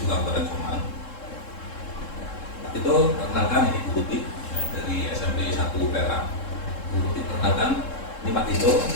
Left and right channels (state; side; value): late; right; 3.7 ms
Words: Kabupaten Jombang. Pak Tito, perkenalkan ini Bu Tuti dari SMP 1 Perak. Bu Tuti, perkenalkan ini Pak Tito